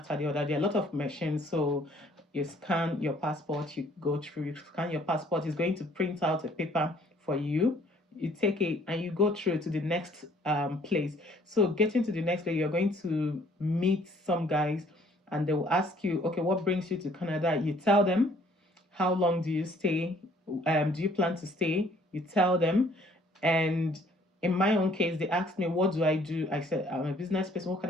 the other. There are a lot of machines, so you scan your passport, you go through, you scan your passport. It's going to print out a paper for you. You take it and you go through to the next place. So getting to the next place, you're going to meet some guys and they will ask you, okay, what brings you to Canada? You tell them. How long do you stay? Do you plan to stay? You tell them. And in my own case, they asked me, what do I do? I said, I'm a business person. What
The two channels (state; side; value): normal; both; correlation 0.59